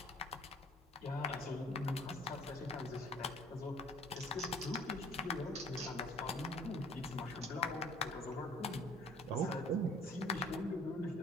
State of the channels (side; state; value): both; normal; correlation 0.53